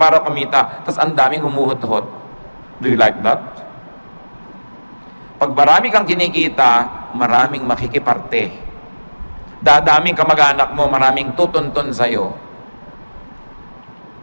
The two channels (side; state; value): both; inverted; correlation -1.00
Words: kumita, tapos ang daming humuhot-hot. Do you like that? Pag marami kang kinikita, maraming makikiparte. Dadaming kamag-anak mo, maraming tutuntun sa'yo.